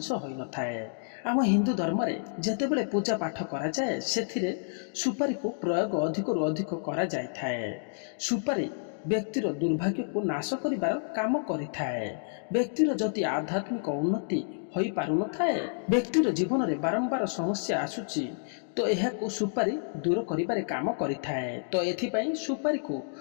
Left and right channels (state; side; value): silent; right; digital silence